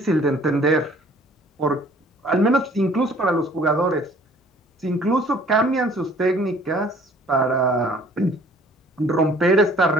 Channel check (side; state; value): both; normal; correlation 0.55